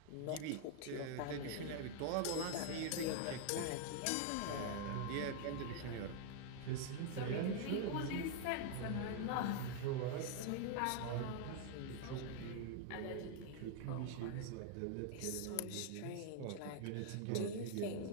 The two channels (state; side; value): different; both; correlation 0.00